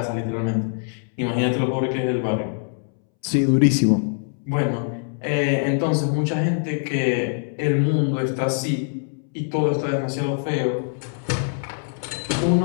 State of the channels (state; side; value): silent; right; 63 dB below the other